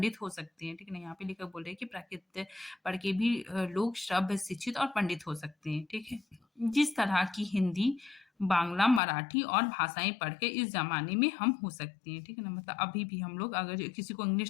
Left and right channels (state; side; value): drops out; right; at 9.0 s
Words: हो सकते हैं, ठीक है ना? यहाँ पे लेखक बोल रहे हैं कि प्राकृत पढ़ के भी लोग सभ्य, शिक्षित और पंडित हो सकते हैं, ठीक है? जिस तरह की हिंदी, बांग्ला, मराठी और भाषाएँ पढ़ के इस ज़माने में हम हो सकते हैं, ठीक है ना? मतलब अभी भी हम लोग अगर किसी को